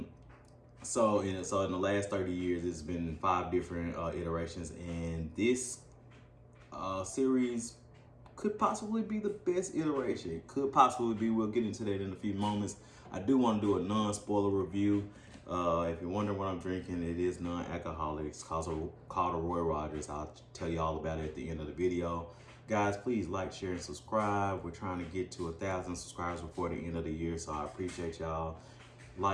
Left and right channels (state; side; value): identical; both; correlation 1.00